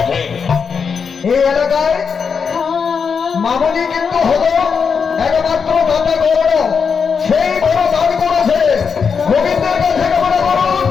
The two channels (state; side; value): quieter; right; 6.0 dB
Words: এই এলাকায় মামনি কিন্তু হলো একমাত্র দাতা গৌর, সেই বড় দান করেছে। গোবিন্দের কাছে কামনা করুন,